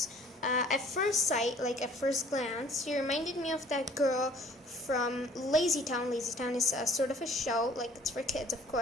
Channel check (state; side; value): normal; both; correlation 0.54